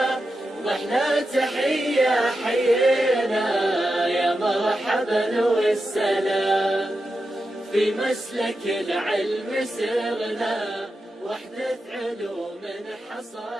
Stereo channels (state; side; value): normal; both; correlation 0.89